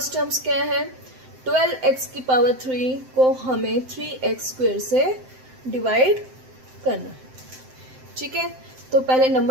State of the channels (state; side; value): late; left; 7.7 ms